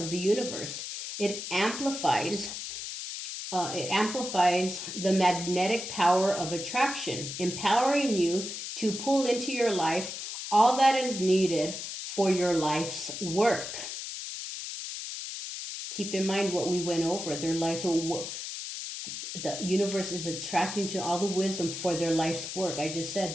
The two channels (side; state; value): left; noise; hiss, 7 dB below the sound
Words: the universe. It amplifies the magnetic power of attraction, empowering you to pull into your life all that is needed for your life's work. Keep in mind what we went over. Their life, the universe is attracting to all the wisdom for their life's work. I just